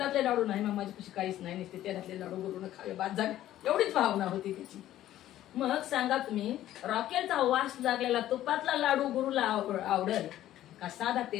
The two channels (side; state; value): right; quieter; 13.2 dB